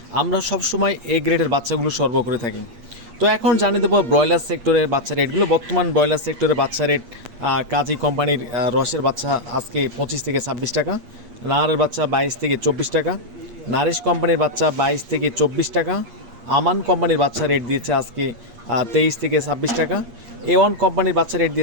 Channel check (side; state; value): left; late; 8.5 ms